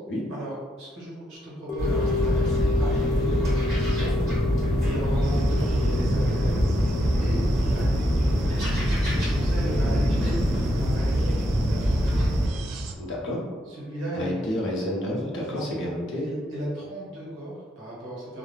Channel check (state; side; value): normal; both; correlation 0.80